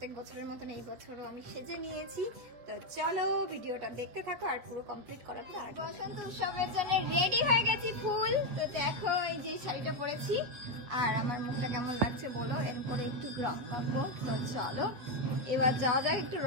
বছরের মতন এই বছরও আমি সেজে নিয়েছি। তো চলো ভিডিওটা দেখতে থাকো, আর পুরো কমপ্লিট করার পর বসন্ত উৎসবের জন্য রেডি হয়ে গেছি ফুল। তো দেখো এই যে শাড়িটা পরেছি, আর আমার মুখটা কেমন লাগছে বলো। এরপরে একটু রং মাখবো। তো চলো এবার যাওয়া যাক একটু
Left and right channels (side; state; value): left; late; 8.2 ms